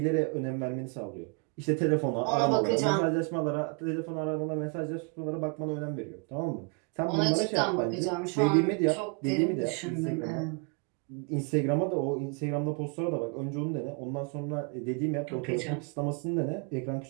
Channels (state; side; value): quieter; left; 33.9 dB